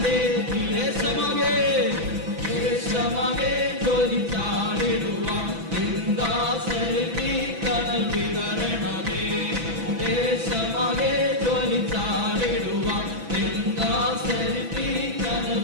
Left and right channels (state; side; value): late; left; 6.0 ms